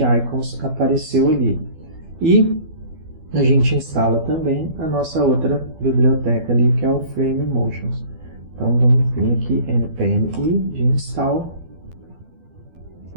Icons apareceu ali. E a gente instala também a nossa outra biblioteca ali, que é o Frame Motions. Então vamos vir aqui, npm i de install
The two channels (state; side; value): late; left; 12 ms